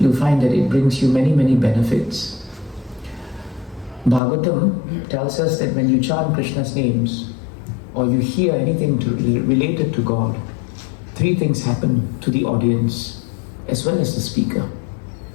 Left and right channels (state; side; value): drops out; right; at 4.2 s